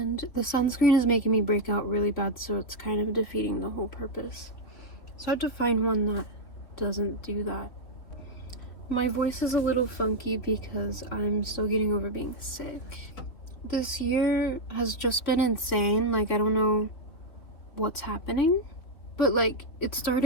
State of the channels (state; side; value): late; right; 3.7 ms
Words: the sunscreen is making me break out really bad, so it's kind of defeating the whole purpose. So I have to find one that doesn't do that. My voice is a little funky because I'm still getting over being sick. This year has just been insane. Like, I don't know what's happening, but like, it